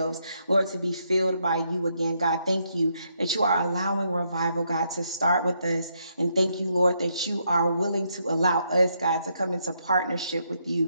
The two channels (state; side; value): inverted; both; correlation -0.76